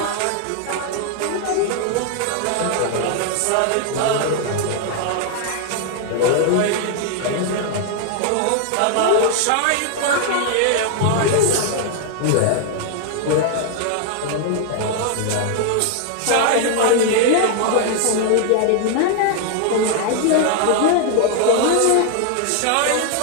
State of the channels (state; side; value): different; both; correlation 0.00